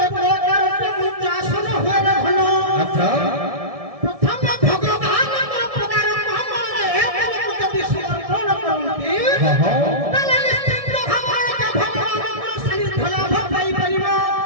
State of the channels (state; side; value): late; left; 1.7 ms